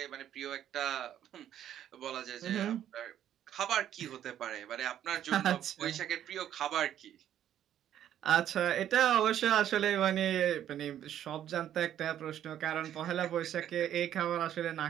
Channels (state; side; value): quieter; left; 10.8 dB